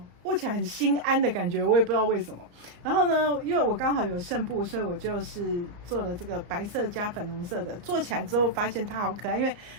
握起来很心安的感觉，我也不知道为什么。然后呢，因为我刚好有剩布，所以我就是做了这个白色加粉红色的。做起来之后发现它好可爱，因为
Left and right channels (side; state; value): left; late; 33 ms